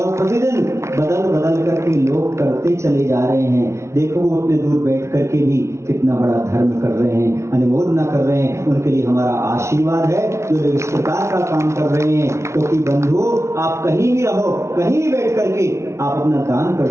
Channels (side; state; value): left; late; 0.13 ms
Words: प्रतिदिन बदल करके लोग करते चले जा रहे हैं। देखो वो उतने दूर बैठ करके भी कितना बड़ा धर्म कर रहे हैं, अनुमोदना कर रहे हैं। उनके लिए हमारा आशीर्वाद है जो लोग इस प्रकार का काम कर रहे हैं। क्योंकि बंधु आप कहीं भी रहो, कहीं भी बैठ करके आप अपना दान कर